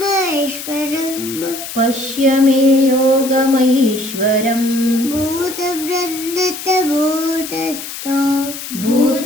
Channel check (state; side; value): noise; left; hiss, 9 dB below the sound